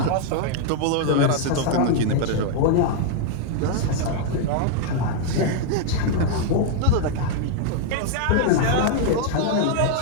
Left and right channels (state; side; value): different; both; correlation -0.01